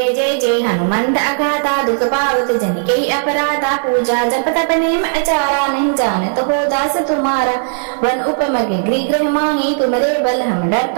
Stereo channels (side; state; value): left; silent; digital silence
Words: जय जय हनुमंत अगाधा दुख पावत जन के अपराधा। पूजा जप तप नेम अचारा नहीं जानत हो दास तुम्हारा। वन उपमग गृह गृह माही तुमरे बल हम